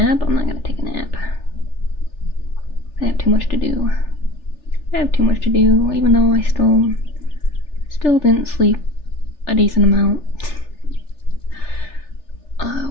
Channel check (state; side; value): late; right; 3.4 ms